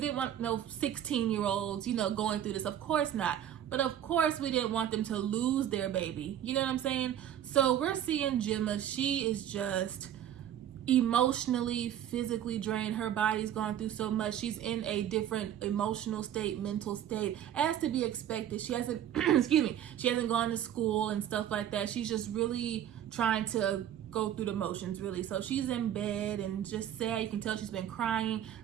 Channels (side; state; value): left; quieter; 10.7 dB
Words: want no 16-year-olds, going through this. Of course not. But of course, we didn't want them to lose their baby. You know what I'm saying? So we're seeing Gemma. She is just emotionally, physically drained. Her body's gone through so much. She's in a different emotional state, mental state, as to be expected. She hasn't, she hasn't gone to school and stuff like that. She's just really trying to go through the motions, really. So she's in bed and just sad. You can tell she's been crying.